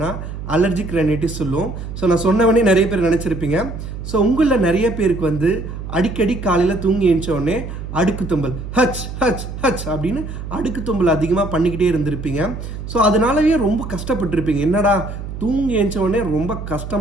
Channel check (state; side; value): noise; right; hum, 8 dB below the sound